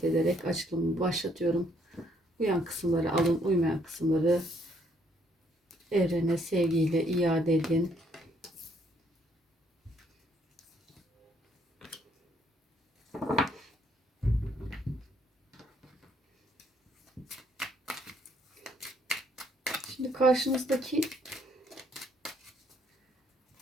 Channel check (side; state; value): both; normal; correlation 0.69